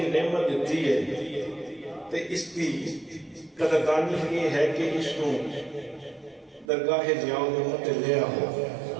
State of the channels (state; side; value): drops out; left; at 6.7 s